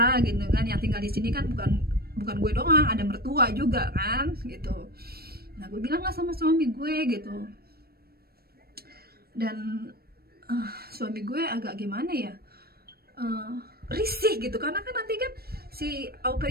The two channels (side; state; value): left; late; 0.45 ms